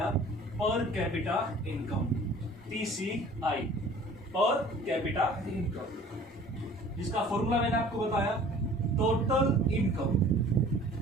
पर capita income, PCI, per capita income, जिसका फॉर्मूला मैंने आपको बताया टोटल इनकम,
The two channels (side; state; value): both; normal; correlation 0.48